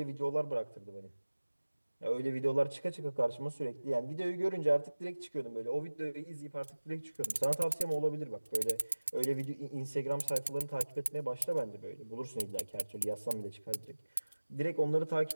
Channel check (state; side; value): inverted; both; correlation -1.00